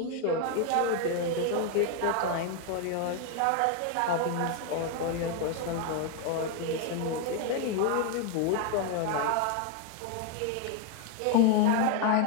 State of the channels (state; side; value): different; both; correlation 0.01